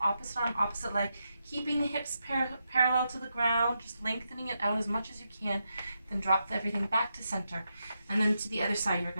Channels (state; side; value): inverted; both; correlation -0.85